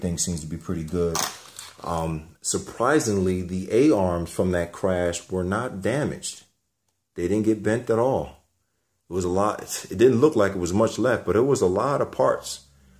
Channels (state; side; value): identical; both; correlation 1.00